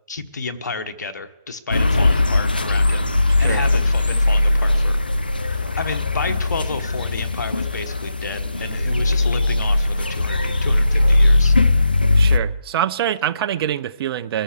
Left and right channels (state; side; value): inverted; both; correlation -0.84